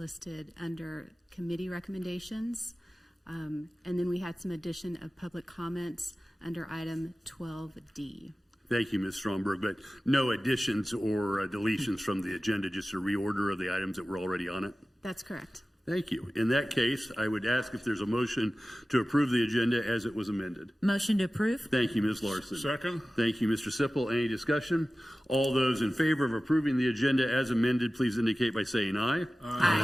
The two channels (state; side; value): normal; both; correlation 0.96